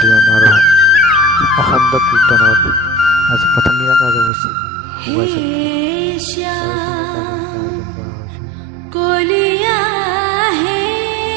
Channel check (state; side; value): drops out; left; at 4.3 s